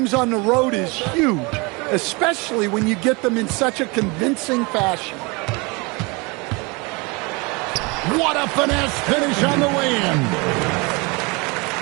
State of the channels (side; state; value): left; quieter; 27.9 dB